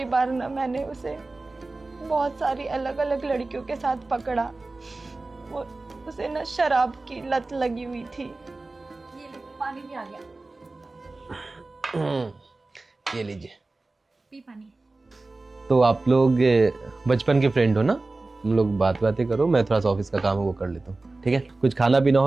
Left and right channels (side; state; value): left; quieter; 3.3 dB